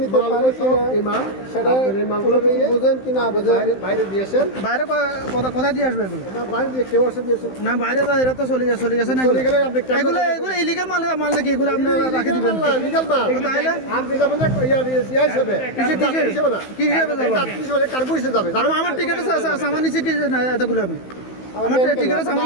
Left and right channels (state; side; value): late; right; 15 ms